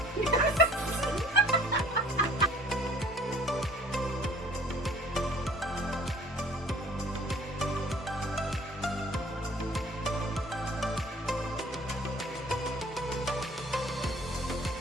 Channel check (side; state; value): both; normal; correlation 0.52